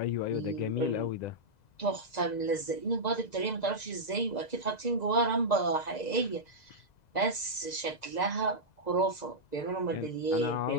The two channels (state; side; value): late; right; 2.0 ms